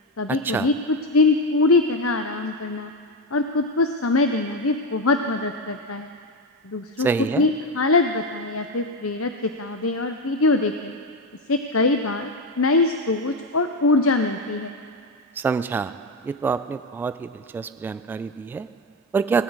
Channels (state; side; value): normal; both; correlation 0.13